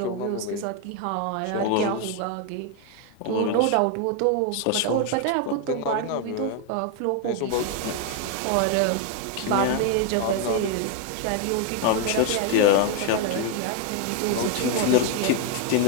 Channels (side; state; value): both; different; correlation 0.01